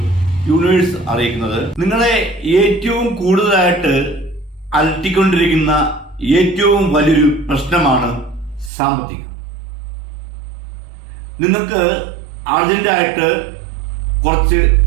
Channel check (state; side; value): drops out; left; at 8.7 s